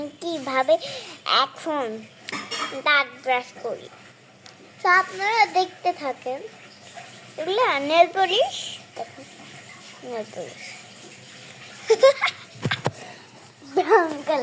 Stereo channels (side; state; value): both; identical; correlation 1.00